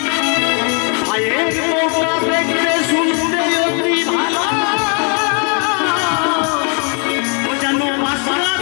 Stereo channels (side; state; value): right; quieter; 38.3 dB